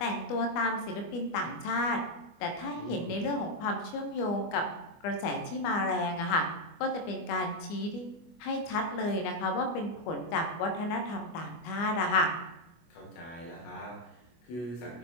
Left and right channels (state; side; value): late; right; 24 ms